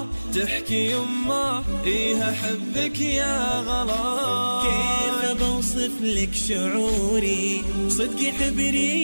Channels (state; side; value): inverted; both; correlation -1.00